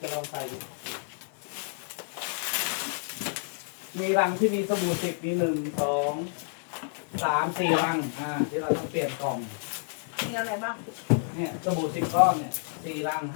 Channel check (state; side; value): silent; right; digital silence